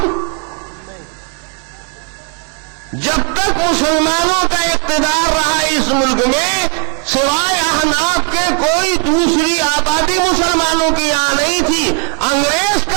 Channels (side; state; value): left; quieter; 37.5 dB